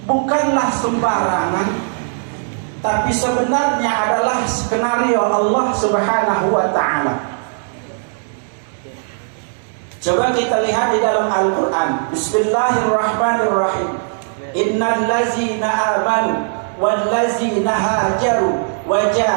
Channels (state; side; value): silent; left; digital silence